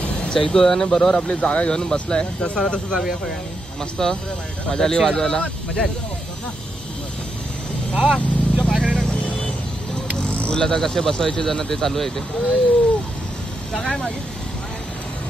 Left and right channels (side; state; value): both; normal; correlation 0.83